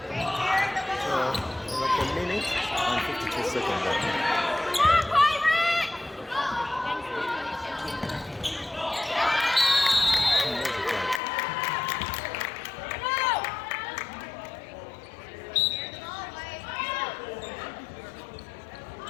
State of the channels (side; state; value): right; drops out; at 11.2 s